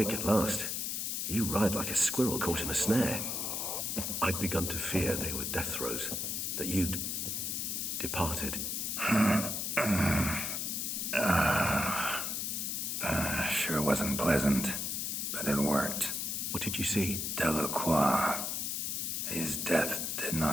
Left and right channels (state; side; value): noise; left; hiss, 1 dB below the sound